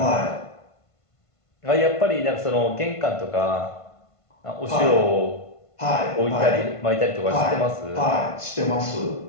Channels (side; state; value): right; late; 1.5 ms